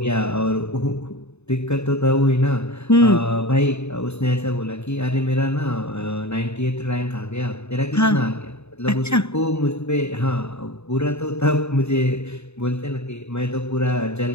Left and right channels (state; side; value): late; right; 0.81 ms